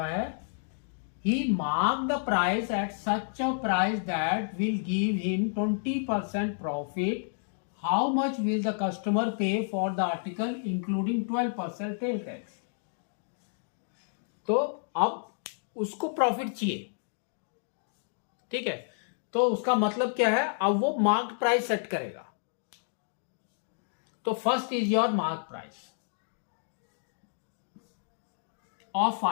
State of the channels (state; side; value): silent; right; digital silence